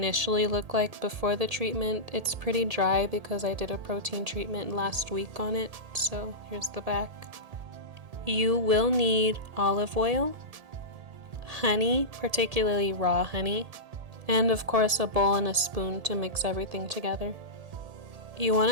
looked like before the treatment. It's pretty dry because I did a protein treatment last week on it. So here's the back. You will need olive oil, honey, particularly raw honey, and of course a bowl and a spoon to mix everything together. You want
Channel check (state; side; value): late; left; 1.7 ms